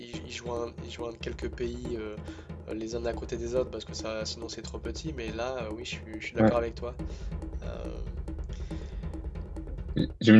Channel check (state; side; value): identical; both; correlation 1.00